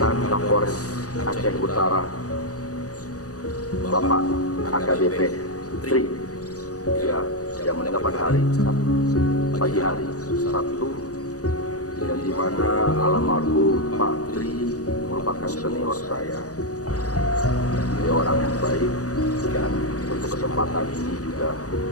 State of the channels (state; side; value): late; right; 0.66 ms